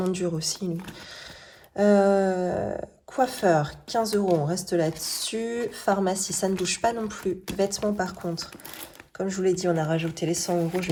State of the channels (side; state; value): both; identical; correlation 1.00